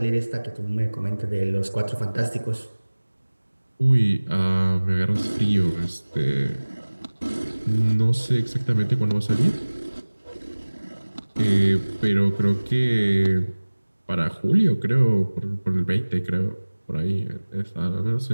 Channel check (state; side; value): inverted; both; correlation -1.00